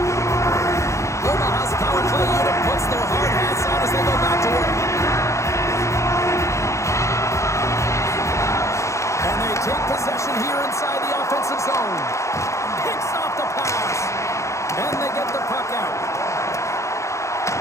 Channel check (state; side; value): late; right; 0.14 ms